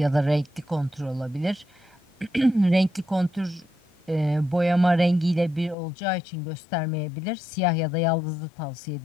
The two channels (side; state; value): right; drops out; at 5.8 s